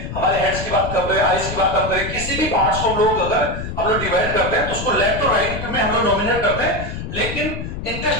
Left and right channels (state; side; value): noise; left; rumble, 7 dB below the sound